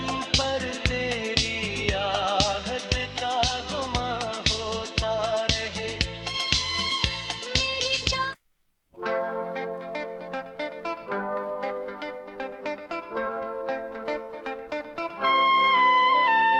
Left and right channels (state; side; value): identical; both; correlation 1.00